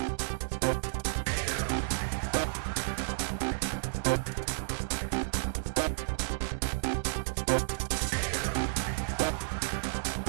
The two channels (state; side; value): silent; left; digital silence